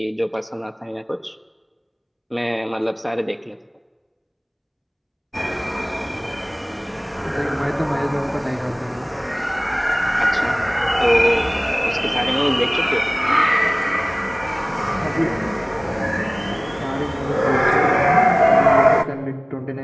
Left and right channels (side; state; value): both; identical; correlation 1.00